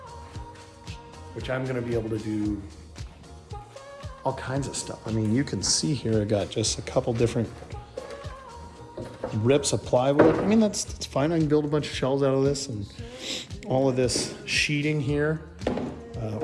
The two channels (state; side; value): identical; both; correlation 1.00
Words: which I'm gonna be able to do all kinds of stuff. You can see here, I got just a couple different rips of plywood. That's fine. I can build a bunch of shelves out of this, and all of this sheeting here.